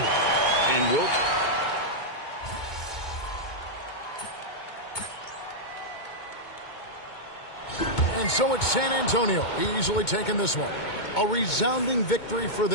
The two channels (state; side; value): late; right; 2.2 ms